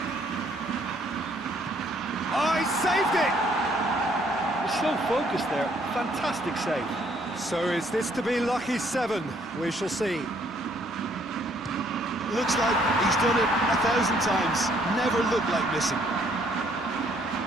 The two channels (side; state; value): both; normal; correlation 0.66